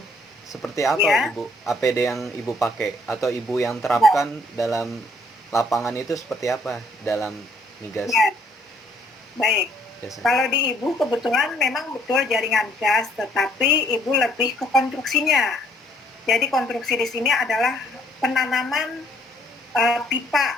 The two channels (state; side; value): normal; both; correlation 0.64